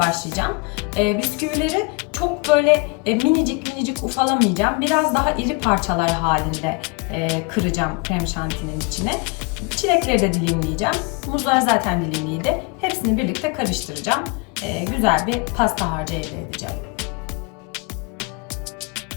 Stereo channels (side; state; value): right; quieter; 29.1 dB